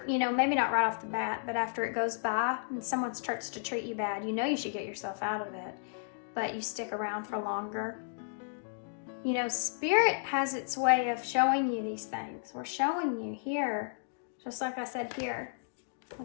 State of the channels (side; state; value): right; silent; digital silence